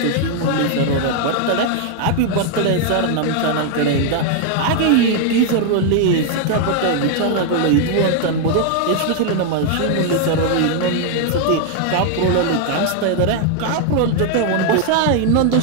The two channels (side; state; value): both; different; correlation 0.00